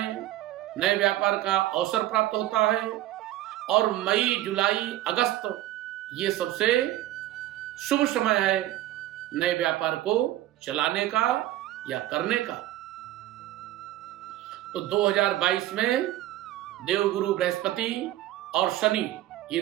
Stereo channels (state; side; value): quieter; left; 14.6 dB